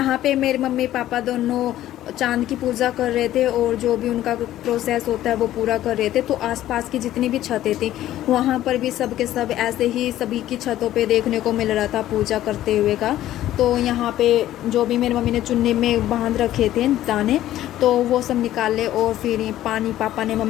पे मेरे मम्मी पापा दोनों चांद की पूजा कर रहे थे और जो भी उनका प्रोसेस होता है वो पूरा कर रहे थे। तो आसपास की जितनी भी छतें थी वहाँ पर भी सब के सब ऐसे ही सभी की छतों पे देखने को मिल रहा था पूजा करते हुए का। तो यहाँ पे जो भी मेरी मम्मी ने चुन्नी में बांध रखे थे दाने, तो वो सब निकाले और फिर पानी पापा ने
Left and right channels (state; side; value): quieter; right; 13.5 dB